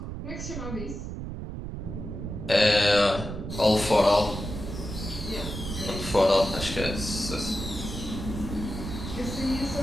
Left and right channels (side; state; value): right; noise; rumble, 7 dB below the sound